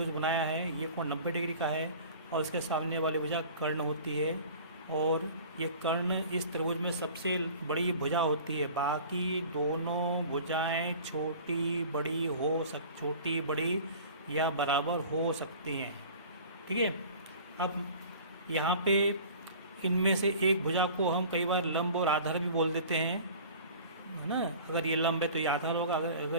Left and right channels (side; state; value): both; inverted; correlation -0.43